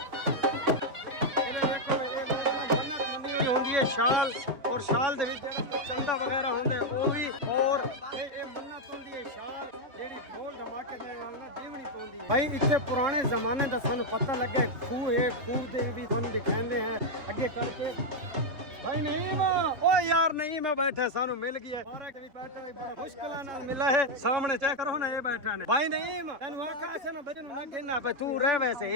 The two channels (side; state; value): left; late; 3.4 ms